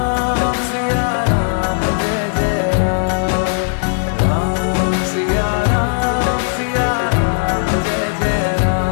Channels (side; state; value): right; silent; digital silence